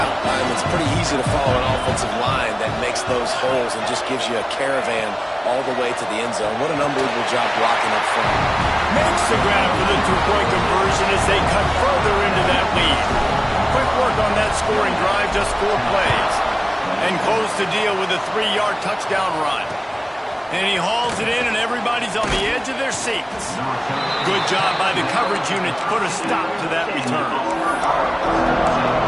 it's pretty easy to follow an offensive line that makes those holes and just gives you a caravan all the way to the end zone. What an unbelievable job blocking up front. Makes the grab for the 2-point conversion as they cut further into that lead. Quick work on that scoring drive, just 4 plays. And close the deal with a 3-yard touchdown run. And he hauls it in, and everybody's on the edge of their seats. Good job by the coverage unit to put a stop to that return.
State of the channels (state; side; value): identical; both; correlation 1.00